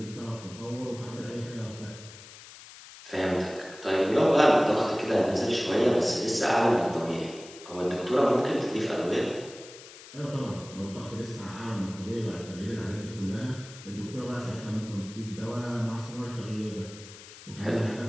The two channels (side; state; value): left; noise; hiss, 17 dB below the sound